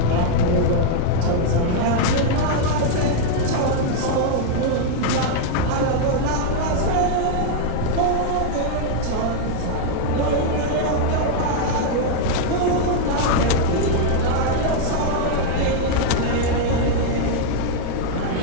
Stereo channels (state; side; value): different; both; correlation 0.00